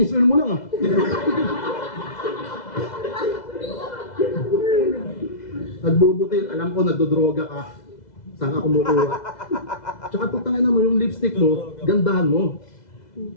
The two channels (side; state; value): right; late; 2.0 ms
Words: oil mo lang ah. Nagbubutil, alam ko nagdodroga ka. Saan ka kumukuha? Tsaka putang ina mo, yung lipstick mo, gandahan mo.